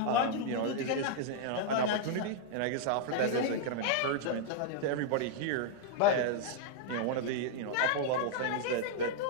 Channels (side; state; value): both; different; correlation -0.01